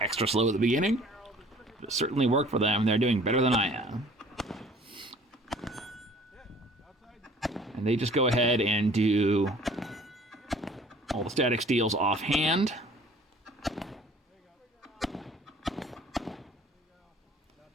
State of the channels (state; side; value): normal; both; correlation 0.52